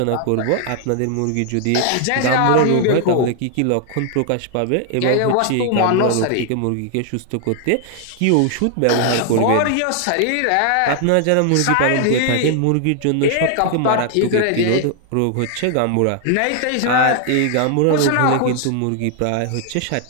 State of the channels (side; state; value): both; different; correlation 0.00